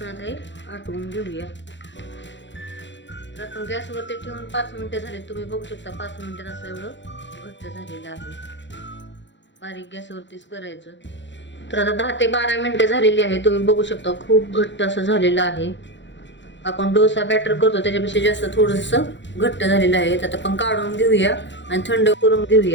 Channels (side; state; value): right; late; 0.53 ms